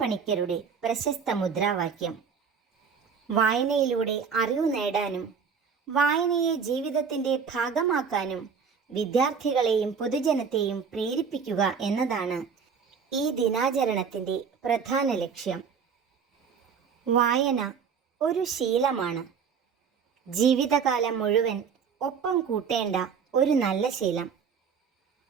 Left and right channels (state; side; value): quieter; left; 6.3 dB